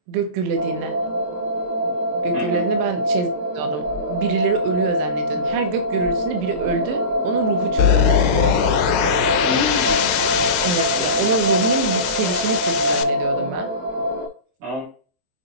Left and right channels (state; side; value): late; left; 23 ms